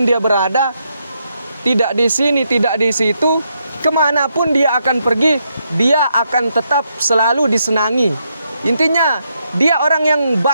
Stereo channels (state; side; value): inverted; both; correlation -0.79